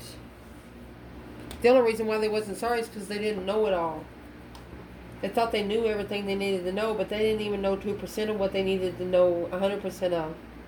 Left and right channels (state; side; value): identical; both; correlation 1.00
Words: the only reason why they wasn't sorry is because they didn't know it all. They thought they knew everything they needed to know, but they didn't even know 2% of what they needed to know 100% of.